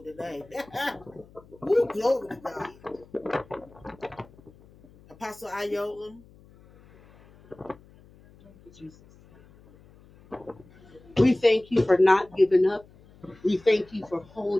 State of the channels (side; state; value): left; noise; hum, 25 dB below the sound